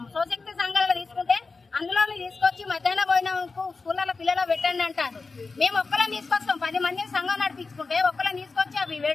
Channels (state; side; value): quieter; right; 4.1 dB